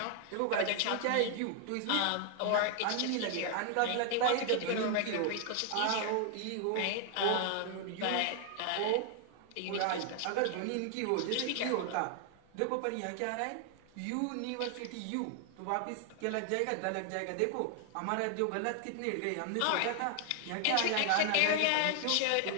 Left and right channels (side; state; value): both; different; correlation 0.00